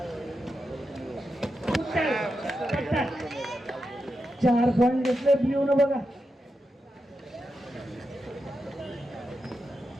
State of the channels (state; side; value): normal; both; correlation 0.88